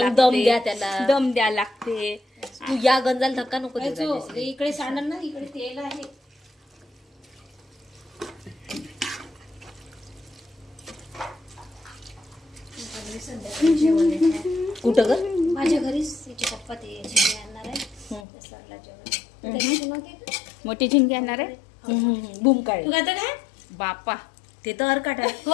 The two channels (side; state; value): right; drops out; at 18.2 s